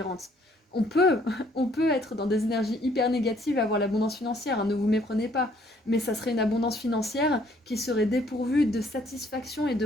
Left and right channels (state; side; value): normal; both; correlation 0.63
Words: On peut, on peut être dans des énergies hyper négatives et avoir l'abondance financière, hein, ne vous méprenez pas. Mais ça serait une abondance financière qui serait dépourvue de satisfaction et de